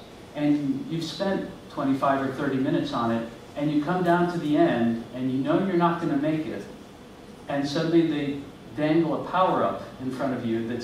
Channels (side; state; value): both; identical; correlation 1.00